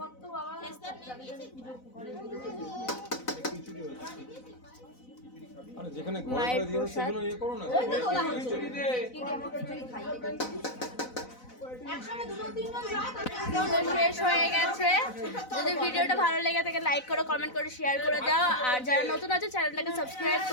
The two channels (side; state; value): right; late; 4.0 ms